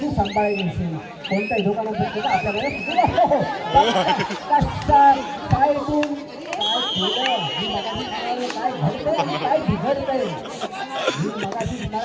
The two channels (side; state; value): both; identical; correlation 1.00